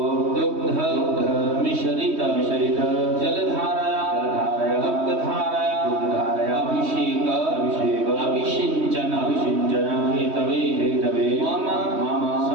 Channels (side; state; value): left; late; 3.1 ms